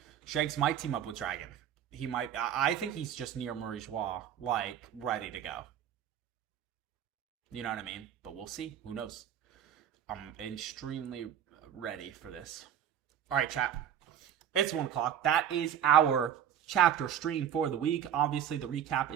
Shanks might team up with Dragon. He might. I think he's just near Marie Joie, like ready to go. You know what I mean? But we'll see. Who knows? I'm extremely ready for this. All right, chat. It's 1 o'clock. That is our chapter stream for the week. Obviously, the recap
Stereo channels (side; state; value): left; quieter; 9.6 dB